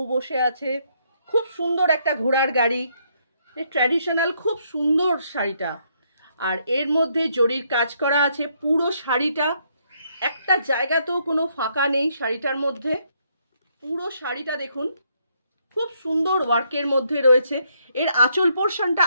বসে আছে, খুব সুন্দর একটা ঘোড়ার গাড়ি, ট্র্যাডিশনাল, খুব সুন্দর শাড়িটা। আর এর মধ্যে জরির কাজ করা আছে পুরো শাড়িটা, একটা জায়গাতেও কোনো ফাঁকা নেই শাড়িটার মধ্যে। পুরো শাড়িটা দেখুন খুব সুন্দর ওয়ার্কের মধ্যে রয়েছে। এর আঁচল পোর্শনটা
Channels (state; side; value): inverted; both; correlation -0.73